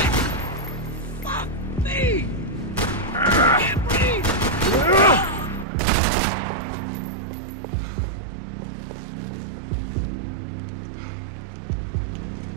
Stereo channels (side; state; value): left; drops out; at 5.7 s